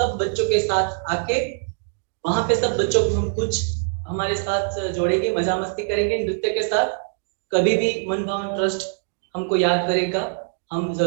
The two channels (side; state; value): left; silent; digital silence